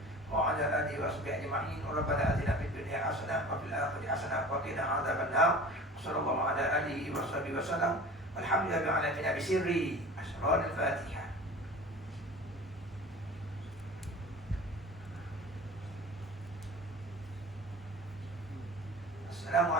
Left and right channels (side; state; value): both; normal; correlation 0.39